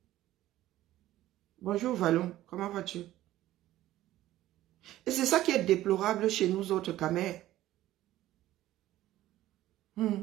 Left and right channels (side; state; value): left; quieter; 14.6 dB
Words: Bonjour Vallon, comment vas-tu? Et c'est ça qui est déplorable chez nous autres camers.